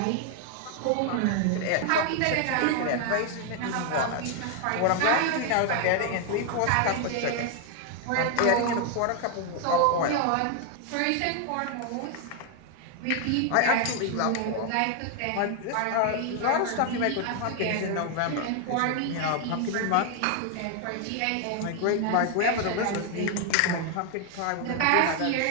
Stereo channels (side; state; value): both; different; correlation 0.00